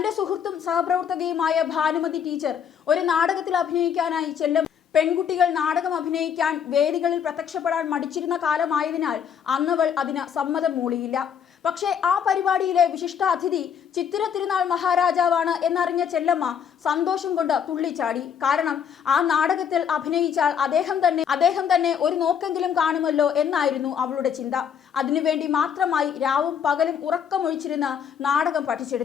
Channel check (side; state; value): right; quieter; 7.8 dB